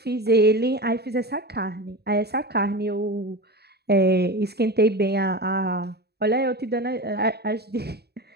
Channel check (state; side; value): late; left; 0.47 ms